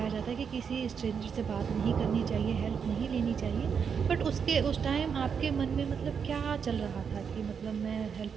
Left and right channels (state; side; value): quieter; left; 6.7 dB